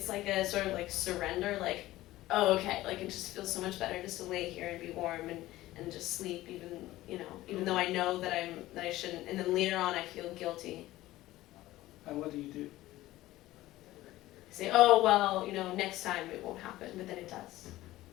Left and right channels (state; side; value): quieter; right; 16.4 dB